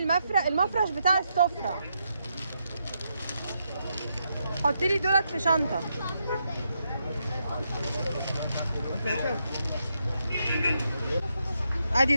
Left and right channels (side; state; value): both; inverted; correlation -0.81